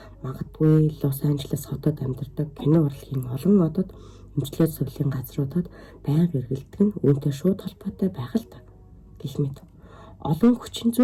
Магадгүй Лос Анжелес хотод амьдардаг кино урлагийн олон одод эмчилгээ сувлийн газруудад байнга эргэлдэг нь үүнтэй шууд холбоотой байх л та. Гэх мэт олон хүчин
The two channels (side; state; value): both; identical; correlation 1.00